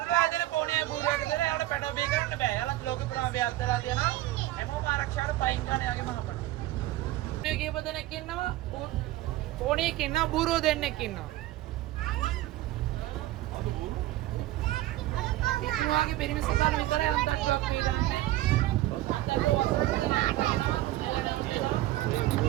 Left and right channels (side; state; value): left; quieter; 15.8 dB